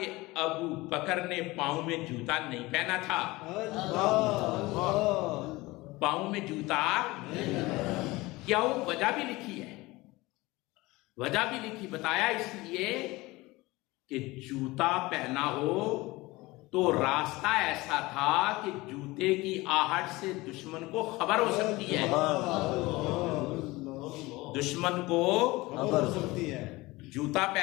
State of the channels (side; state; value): right; quieter; 21.1 dB